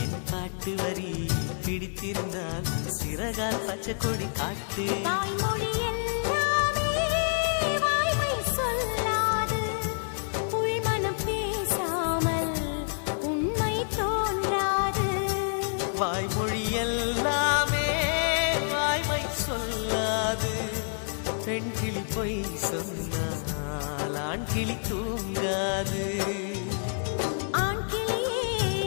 என் பாட்டு வரி பிடித்திருந்தால் சிறகால் பச்சை கொடி காட்டு. வாய்மொழி எல்லாமே வாய்மை சொல்லாது. பெண் கிளி பொய் சொன்னால் ஆண் கிளி தூங்காது.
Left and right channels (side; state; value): right; silent; digital silence